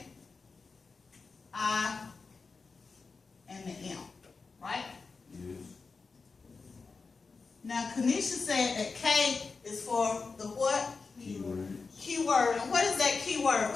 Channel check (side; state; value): right; quieter; 4.5 dB